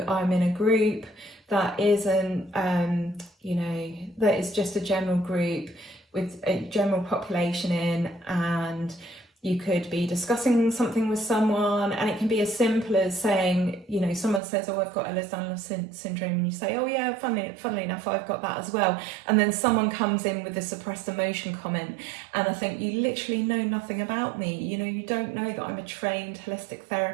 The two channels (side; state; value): left; drops out; at 14.4 s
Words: I'm in a group that isn't, that is just a general group with a general population in, and you could be discussing something with someone, and it can be as simple as saying, you know, someone says, oh, I've got Ehlers-Danlos syndrome, and you say, oh yeah, funnily enough, I've got that as well. And then someone comes in with a suppressed emotion comment, and I think, you literally know nothing about me. You know, you don't know that I'm a trained holistic